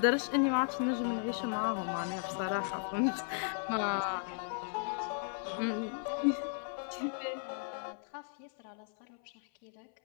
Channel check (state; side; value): silent; right; 54 dB below the other